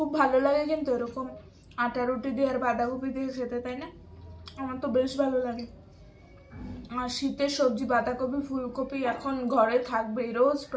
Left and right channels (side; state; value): both; identical; correlation 1.00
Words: ভালো লাগে কিন্তু এরকম আটা রুটি দিয়ে আর বাঁধাকপি দিয়ে খেতে, তাই না? আমার তো বেশ ভালো লাগে। আর শীতের সবজি বাঁধাকপি ফুলকপি এখন ঘরে থাকবে, রোজ